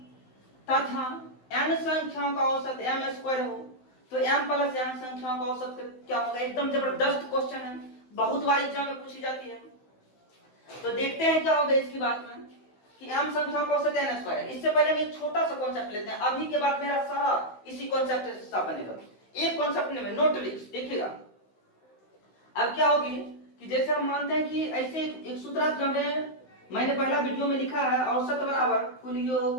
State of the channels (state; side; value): late; right; 16 ms